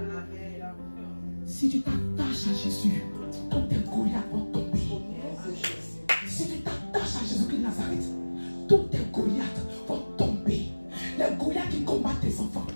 Si tu t'attaches à Jésus, tous tes Goliaths vont tomber. Si tu t'attaches à Jésus-Christ de Nazareth, tous tes Goliaths vont tomber. Les Goliaths qui combattent tes enfants,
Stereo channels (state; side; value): inverted; both; correlation -1.00